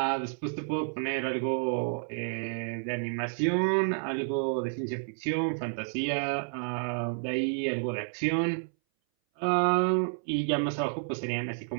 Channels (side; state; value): left; silent; 58 dB below the other